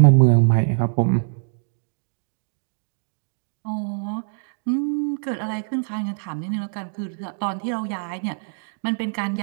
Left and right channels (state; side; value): silent; left; digital silence